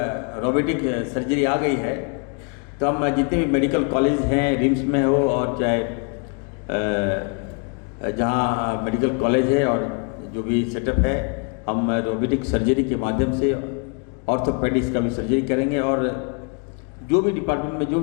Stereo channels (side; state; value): right; quieter; 37.5 dB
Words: रोबोटिक सर्जरी आ गई है तो हम जितने भी मेडिकल कॉलेज हैं, रिम्स में हो और चाहे जहाँ मेडिकल कॉलेज है और जो भी सेटअप है, हम रोबोटिक सर्जरी के माध्यम से ऑर्थोपेडिक्स का भी सर्जरी करेंगे और जो भी डिपार्टमेंट में जो